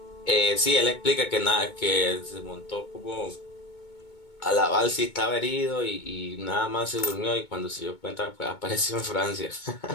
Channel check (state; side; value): late; right; 2.2 ms